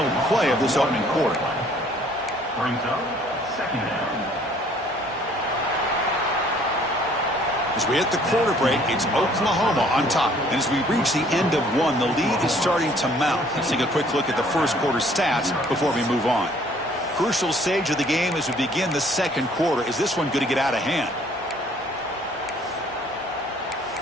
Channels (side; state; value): both; normal; correlation 0.59